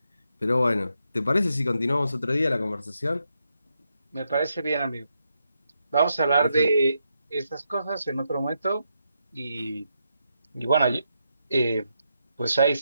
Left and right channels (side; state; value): both; inverted; correlation -0.82